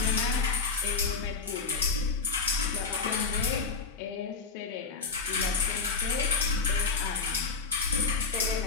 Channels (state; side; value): quieter; right; 4.6 dB